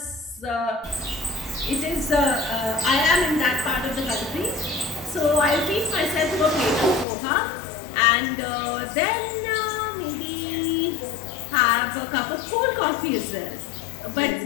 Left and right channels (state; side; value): drops out; right; at 7.1 s